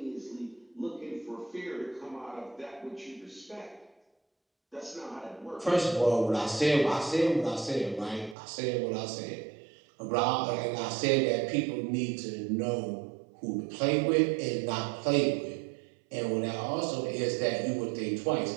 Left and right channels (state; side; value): drops out; left; at 8.3 s